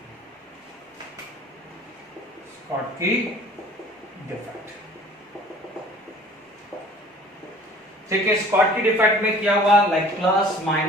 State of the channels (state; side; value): normal; both; correlation 0.49